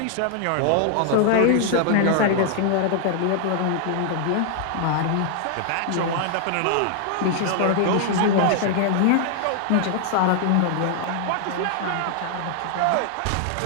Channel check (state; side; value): different; both; correlation 0.00